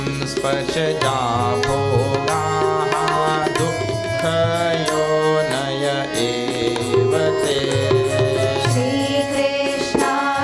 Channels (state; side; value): identical; both; correlation 1.00